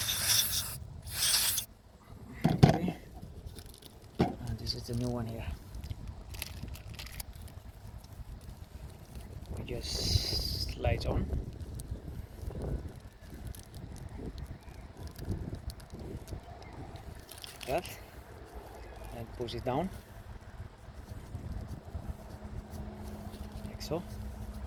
This is the new one here. We just slides on. that, and push it down like so.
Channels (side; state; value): both; identical; correlation 1.00